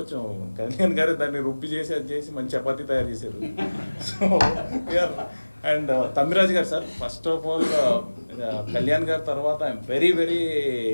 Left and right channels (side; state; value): both; inverted; correlation -1.00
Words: కళ్యాణ్ గారు దాన్ని రుబ్బి చేసి అది చేసి మంచి చపాతీ తయారు చేశారు. సో వీఆర్ అండ్ తమ్మిరాజు గారు sir, first of all Kalyan గారి తర్వాత I'm very very